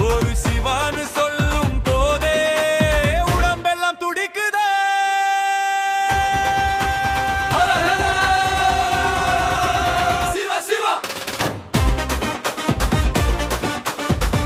ஒரு சிவான்னு சொல்லும் போதே உடம்பெல்லாம் துடிக்குதே. சிவ சிவா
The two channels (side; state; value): both; identical; correlation 1.00